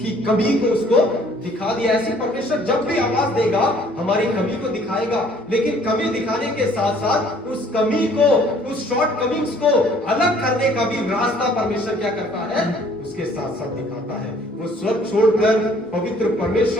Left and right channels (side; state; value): both; normal; correlation 0.58